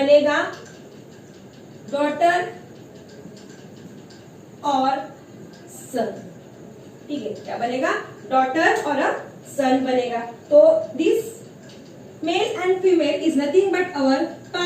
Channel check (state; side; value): identical; both; correlation 1.00